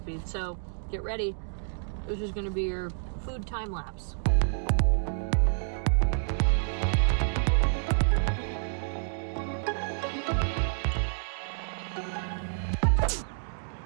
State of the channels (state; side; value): silent; left; digital silence